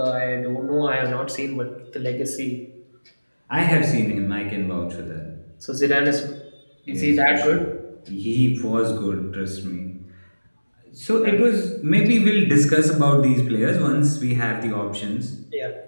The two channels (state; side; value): inverted; both; correlation -1.00